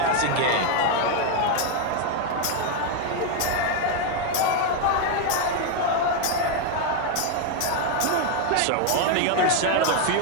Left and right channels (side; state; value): both; different; correlation 0.01